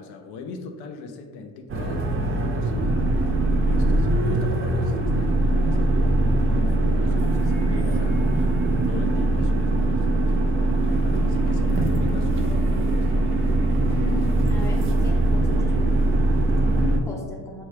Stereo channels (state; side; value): normal; both; correlation 0.79